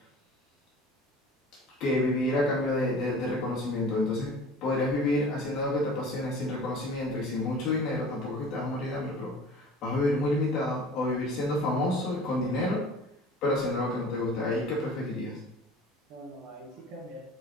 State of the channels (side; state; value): both; normal; correlation 0.43